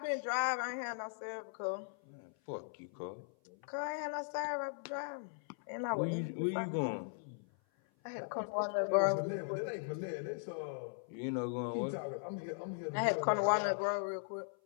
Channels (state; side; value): silent; right; 52 dB below the other